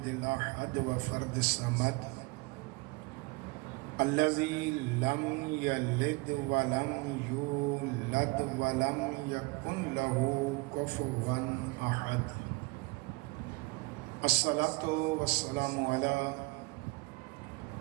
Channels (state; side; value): quieter; left; 25.6 dB